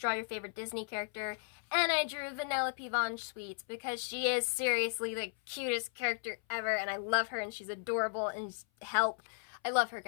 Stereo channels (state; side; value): silent; right; 54 dB below the other